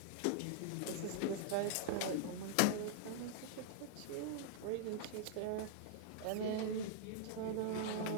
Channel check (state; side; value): different; both; correlation -0.01